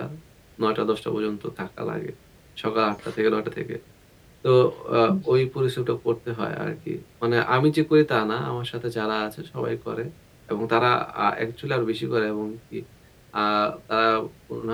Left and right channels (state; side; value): identical; both; correlation 1.00